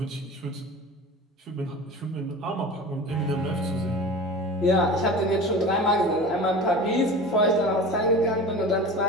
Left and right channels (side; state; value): both; normal; correlation 0.34